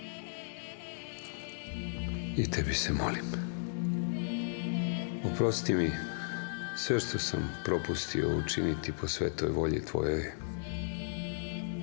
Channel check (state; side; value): silent; right; 55 dB below the other